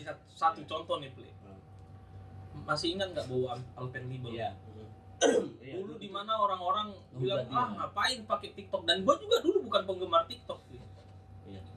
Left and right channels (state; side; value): identical; both; correlation 1.00